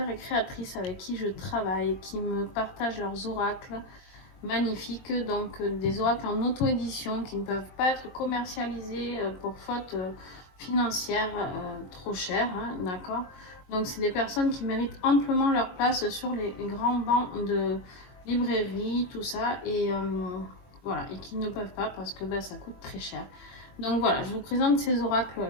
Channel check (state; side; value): late; right; 22 ms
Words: et créatrices avec qui je travaille, qui me partagent leurs oracles magnifiques, donc des oracles en auto-édition qui ne peuvent pas être commercialisés pour faute financière trop chère, hein, d'accord. Donc c'est des personnes qui méritent amplement leur place sur les grands bancs de librairie, tout ça, et voilà, et qui ne peuvent pas parce que ben, ça coûte très cher. Donc voilà, je vous présente ces